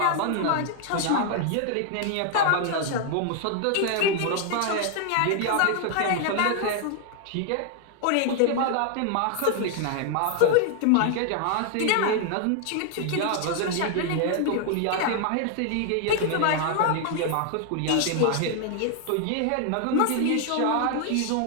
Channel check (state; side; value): different; both; correlation 0.00